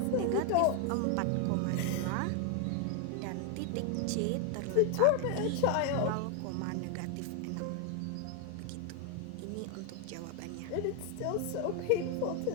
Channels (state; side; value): different; both; correlation 0.00